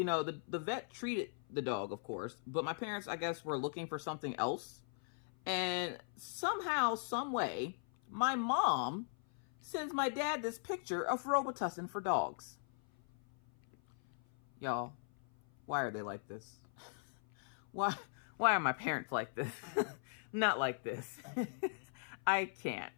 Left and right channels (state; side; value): silent; right; 52 dB below the other